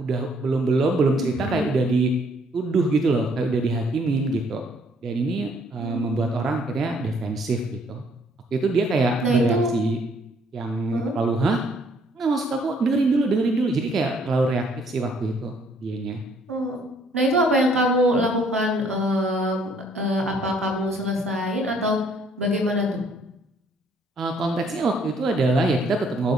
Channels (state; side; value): normal; both; correlation 0.64